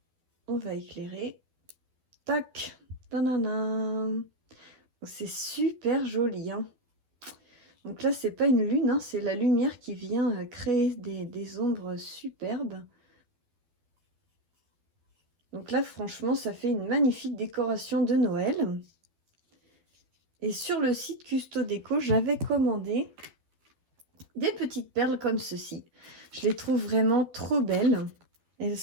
on va éclairer. Tac. Tanana. C'est super joli. Hein. Donc là, c'est pas une lune, hein, c'est la lumière qui vient créer des ombres superbes. Donc là, franchement, ça fait une magnifique décoration de Noël. Et sur le site Custodeco, j'avais commandé des petites perles comme ceci. Je les trouve vraiment trop belles. Elles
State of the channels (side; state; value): left; late; 12 ms